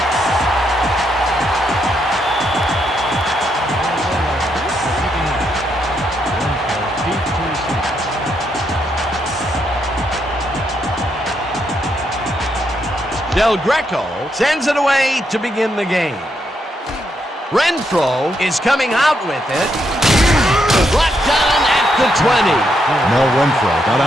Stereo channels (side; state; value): both; normal; correlation 0.78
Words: Del Greco sends it away to begin the game. Renfro is coming out with it. Brought down at the 20. Mel Renfro got